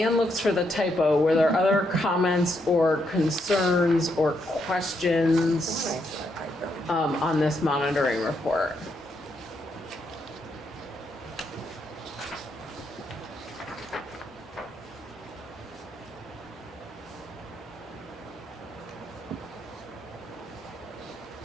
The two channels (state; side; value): normal; both; correlation 0.78